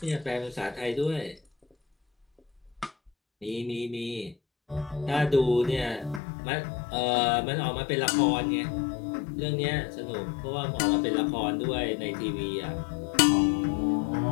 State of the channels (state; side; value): drops out; right; at 6.2 s